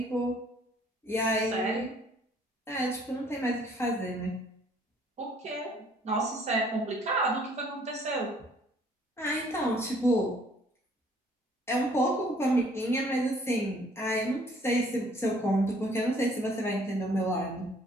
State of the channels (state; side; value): normal; both; correlation 0.60